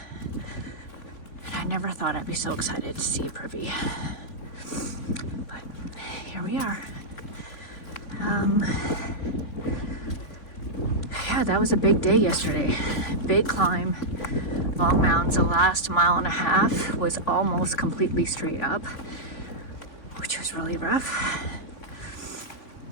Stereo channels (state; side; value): late; right; 3.6 ms